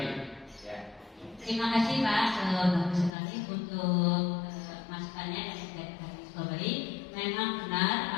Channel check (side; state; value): right; drops out; at 3.1 s